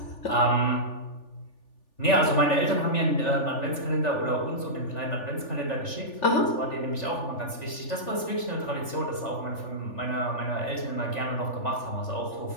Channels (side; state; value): right; late; 3.4 ms